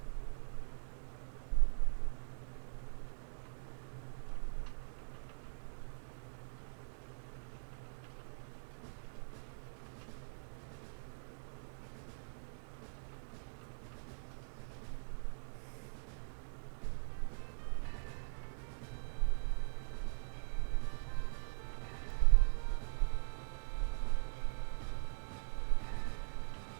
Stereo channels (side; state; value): left; silent; digital silence